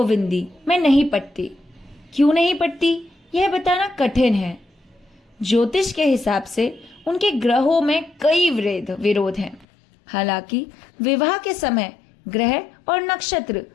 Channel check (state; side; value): drops out; right; at 9.7 s